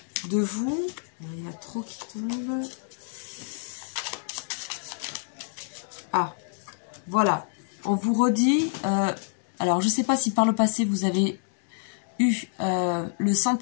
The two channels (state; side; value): silent; right; 59 dB below the other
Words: vous. Il y a trop qui tombent. Ah, voilà. On vous redit... alors, je ne sais pas si par le passé, vous avez eu le